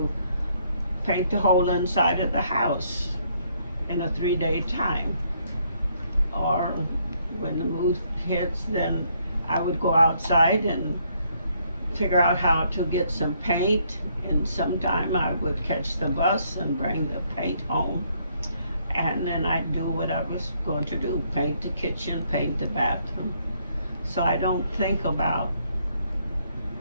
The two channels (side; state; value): both; inverted; correlation -0.70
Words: paint the whole inside of the house in a 3-day time. Or when the mood hits, then I would go outside and figure out how to get some paint, and sometime I would catch the bus and bring the paint home, and then I'd do what I was going to do, paint the kitchen, paint the bathroom. So I don't think about